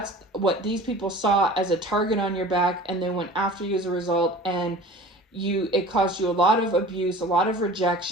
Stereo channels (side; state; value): both; normal; correlation 0.41